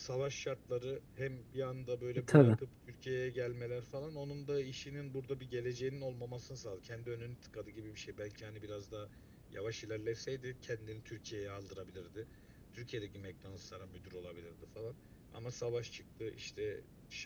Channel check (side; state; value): both; identical; correlation 1.00